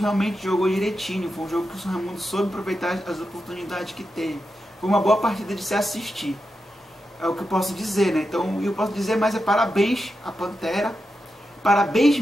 jogou direitinho. Foi um jogo que o São Raimundo soube aproveitar as oportunidades que teve. Foi uma boa partida de se assistir. É o que eu posso dizer, né? Então, eu posso dizer, mas é parabéns à Pantera. Parabéns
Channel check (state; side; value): normal; both; correlation 0.88